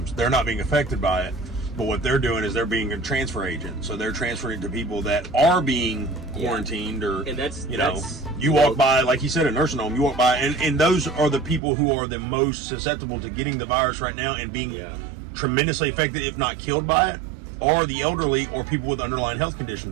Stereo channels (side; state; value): left; drops out; at 11.6 s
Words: They're not being affected by it. But what they're doing is they're being a transfer agent. So they're transferring to people that are being quarantined, or, you walk by, like you said, a nursing home, you walk by, and those are the people who are the most susceptible to getting the virus right now and being tremendously affected, if not killed by it, or the elderly or people with underlying health